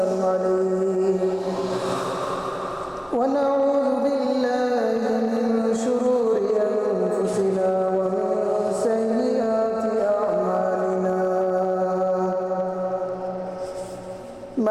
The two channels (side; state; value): both; identical; correlation 1.00